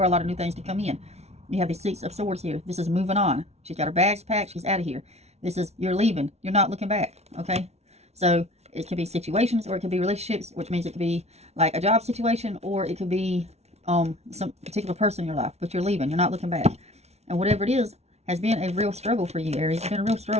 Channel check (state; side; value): late; left; 0.31 ms